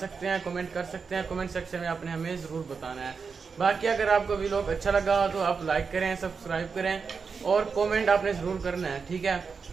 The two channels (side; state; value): left; quieter; 5.3 dB